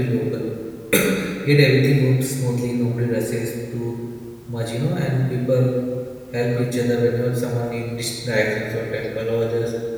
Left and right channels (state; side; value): identical; both; correlation 1.00